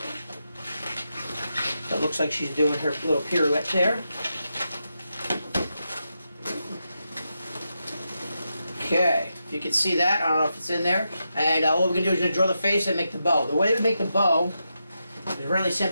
So it looks like she's doing her little pirouette there. Okay, if you can see that, I don't know if it's in there. And what we're going to do is going to draw the face and make the bow. The way we make the bow is really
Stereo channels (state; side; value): inverted; both; correlation -0.86